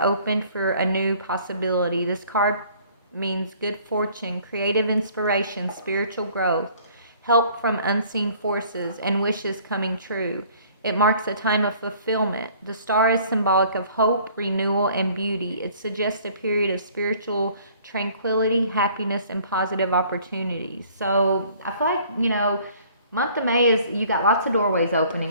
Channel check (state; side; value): inverted; both; correlation -0.56